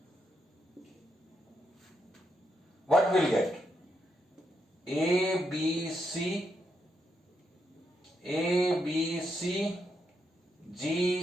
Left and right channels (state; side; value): normal; both; correlation 0.81